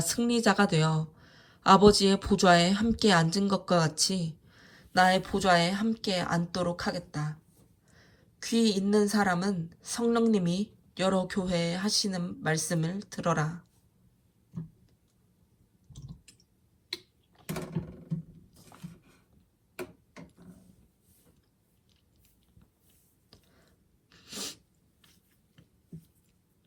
되어 아버지의 보좌에 함께 앉은 것과 같이 나의 보좌에 함께 앉도록 하겠다. 귀 있는 사람은 성령님이 여러 교회에 하시는 말씀을 들어라.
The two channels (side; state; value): both; identical; correlation 1.00